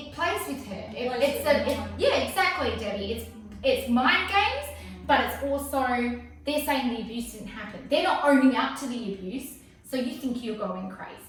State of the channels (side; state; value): both; identical; correlation 1.00